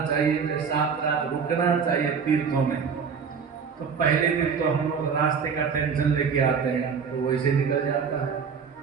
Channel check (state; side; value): quieter; left; 6.2 dB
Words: चाहिए, 7 रात रुकना चाहिए तीर्थों में। तो पहले दिन तो हम लोग रास्ते का टेंशन लेके आते हैं तो वैसे निकल जाता है,